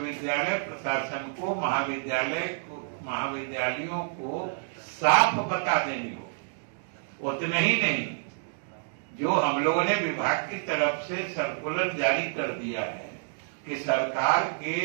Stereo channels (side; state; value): left; silent; digital silence